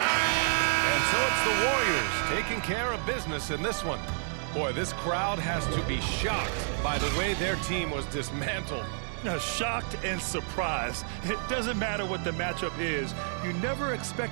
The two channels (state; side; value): silent; left; 58 dB below the other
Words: And so it's the Warriors taking care of business in this one. Boy, this crowd has to be shocked by the way their team was dismantled. Now, shocked and surprised. It doesn't matter what the matchup is. You never